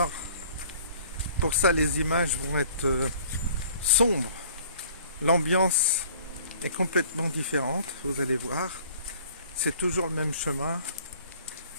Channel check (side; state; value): both; inverted; correlation -0.53